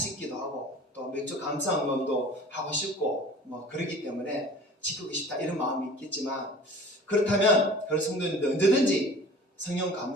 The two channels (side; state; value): both; normal; correlation 0.43